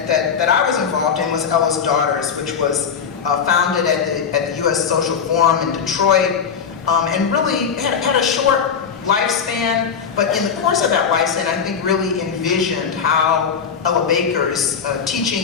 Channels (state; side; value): quieter; right; 6.7 dB